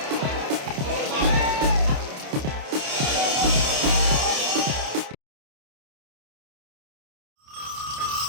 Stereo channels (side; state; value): left; late; 28 ms